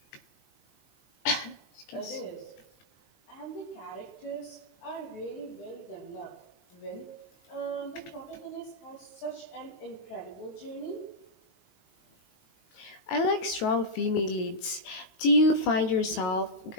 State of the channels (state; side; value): late; right; 19 ms